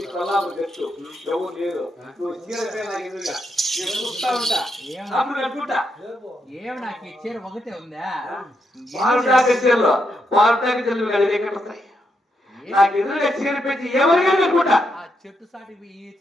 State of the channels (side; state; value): both; normal; correlation 0.81